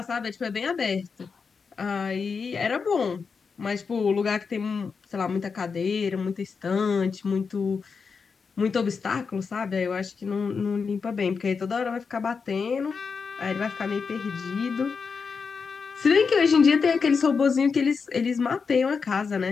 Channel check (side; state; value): right; quieter; 5.4 dB